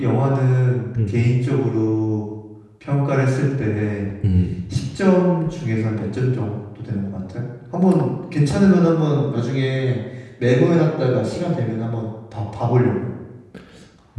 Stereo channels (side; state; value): both; identical; correlation 1.00